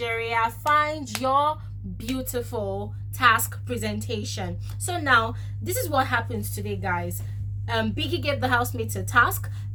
finds your beautiful task presentation. So now this is what happens today, guys. Biggie gave the housemates a task.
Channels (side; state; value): both; identical; correlation 1.00